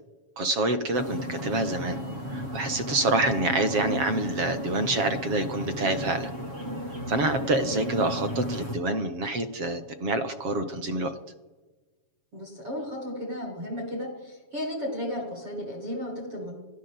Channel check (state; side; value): late; left; 7.3 ms